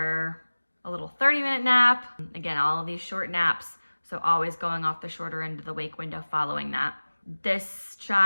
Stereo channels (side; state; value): both; inverted; correlation -1.00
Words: little 30-minute nap. Again, all of these short naps, so always going off the shorter end of the wake window following that. This